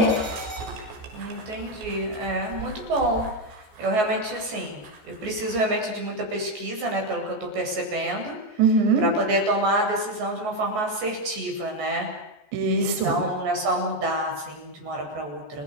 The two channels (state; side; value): late; left; 14 ms